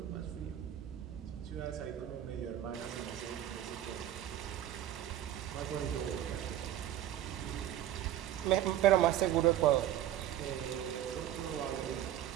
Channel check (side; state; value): left; quieter; 11.9 dB